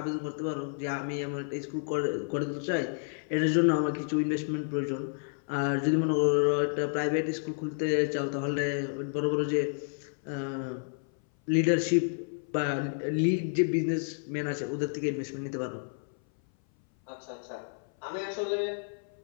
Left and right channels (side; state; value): right; silent; 58 dB below the other